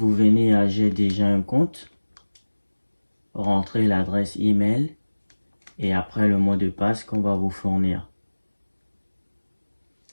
venez à j'ai déjà un compte, rentrez l'adresse email et après le mot de passe qu'on va vous fournir.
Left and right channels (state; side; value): inverted; both; correlation -1.00